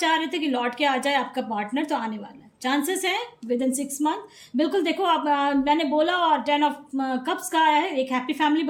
रहे थे कि लौट के आ जाए आपका पार्टनर, तो आने वाला है, चांसेस हैं विद इन 6 मंथ। बिल्कुल देखो आप, मैंने बोला, और 10 ऑफ कप्स का आया है, एक हैप्पी फैमिली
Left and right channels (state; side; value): identical; both; correlation 1.00